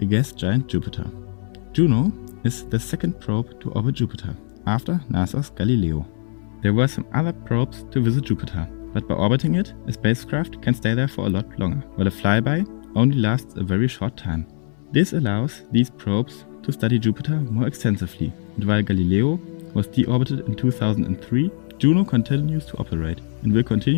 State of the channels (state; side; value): silent; right; 64 dB below the other